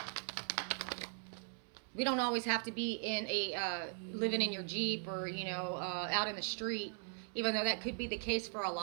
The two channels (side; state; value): left; silent; 52 dB below the other